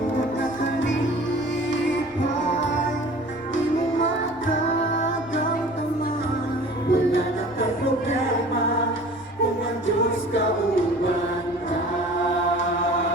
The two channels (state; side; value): noise; left; rumble, 24 dB below the sound